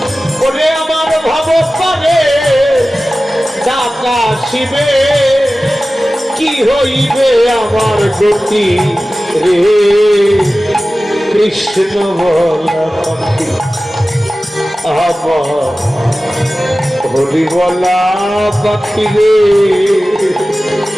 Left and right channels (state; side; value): normal; both; correlation 0.96